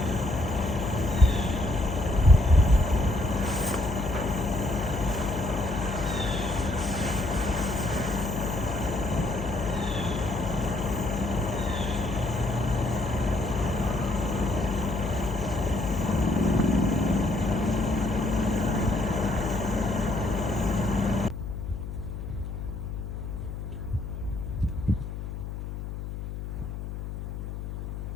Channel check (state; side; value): noise; left; hum, 7 dB below the sound